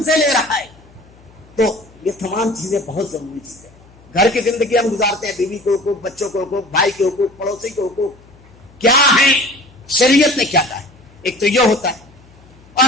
سے لے رہا ہے تو یہ تمام چیزیں بہت ضروری چیزیں۔ گھر کی زندگی ہم گزارتے ہیں، بیوی کے حقوق، بچوں کے حقوق، بھائی کے حقوق، پڑوسی کے حقوق کیا ہیں، شریعت نے کیا کہا ہے، ایک تو یہ ہوتا ہے۔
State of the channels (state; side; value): noise; left; hum, 26 dB below the sound